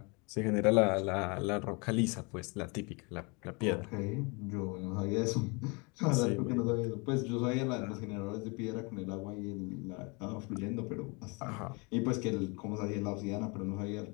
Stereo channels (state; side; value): quieter; right; 30.1 dB